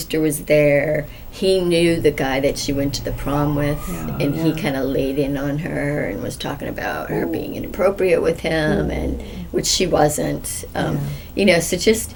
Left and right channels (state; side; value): identical; both; correlation 1.00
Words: was there. He knew the guy that she went to the prom with, and he kind of laid in on her and was talking about her being inappropriate with him, and which she wasn't. So just